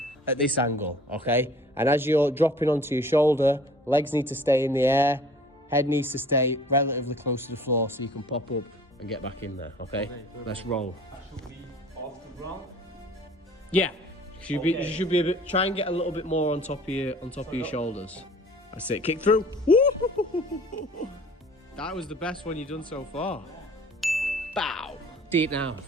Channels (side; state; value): both; normal; correlation 0.49